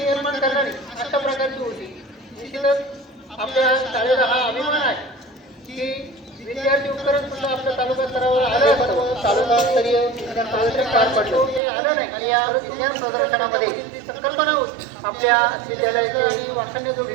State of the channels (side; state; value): left; drops out; at 11.6 s